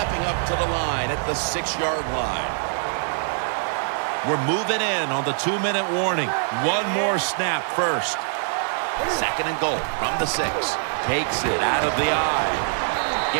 up to the line at the 6-yard line. We're moving in on the 2-minute warning. One more snap first. Second and goal from the 6. Takes it out of the eye.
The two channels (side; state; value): left; silent; 63 dB below the other